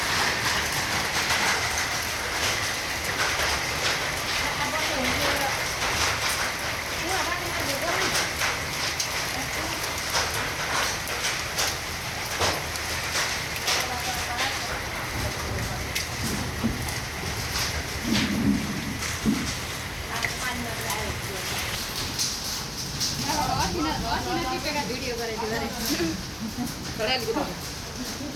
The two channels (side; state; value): both; identical; correlation 1.00